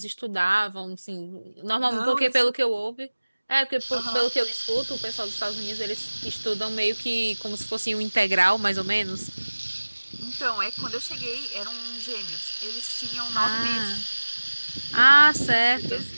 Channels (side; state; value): both; inverted; correlation -1.00